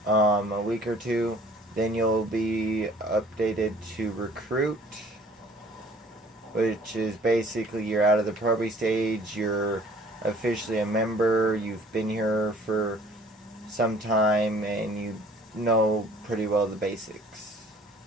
A week or two, then you'll be updated to recruit, which is basically you're out of the probie stage, you're officially a member, you've been here for some time, and you know pretty well the basics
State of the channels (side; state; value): both; normal; correlation 0.54